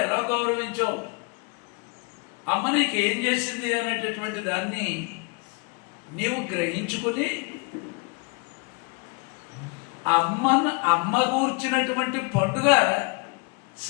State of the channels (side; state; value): right; quieter; 31.2 dB